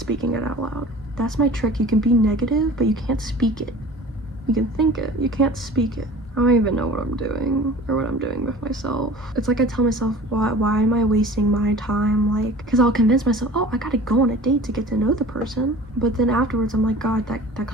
it out loud. That's my trick. You can be negative, but you can't speak it. You can think it, you can't speak it. I don't even know what I'm doing or what I'm doing with myself. It's like I tell myself, why am I wasting my time? Like, because I'll convince myself, oh, I gotta go on a date to get to know the person. But then afterwards, I'm like, God, that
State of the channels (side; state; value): both; normal; correlation 0.42